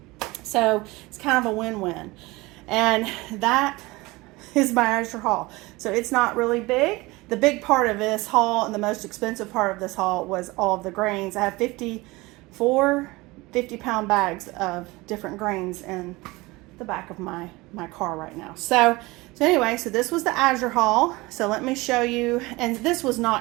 So it's kind of a win-win. And that is my Azure haul. So it's not really big. The big part of this haul and the most expensive part of this haul was all of the grains. I have 54 50-pound bags of different grains in the back of my car right now. So anyway, so this was the Azure haul. So let me show you, and this was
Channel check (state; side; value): quieter; left; 22.2 dB